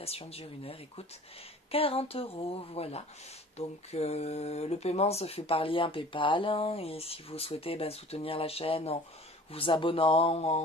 dure 1 heure, écoute, 40 €, voilà. Donc le paiement se fait par lien PayPal. Et si vous souhaitez soutenir la chaîne en vous abonnant,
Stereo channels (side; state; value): both; normal; correlation 0.46